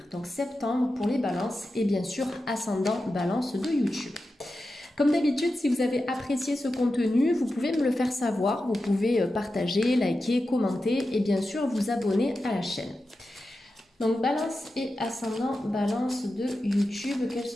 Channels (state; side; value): normal; both; correlation 0.91